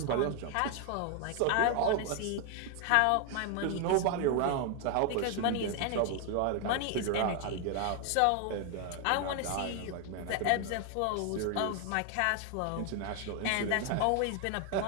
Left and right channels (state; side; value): different; both; correlation 0.00